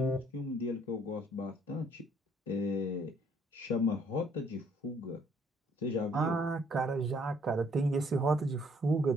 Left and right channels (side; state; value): both; normal; correlation 0.64